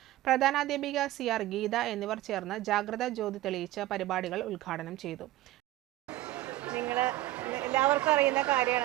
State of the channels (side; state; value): left; quieter; 16.0 dB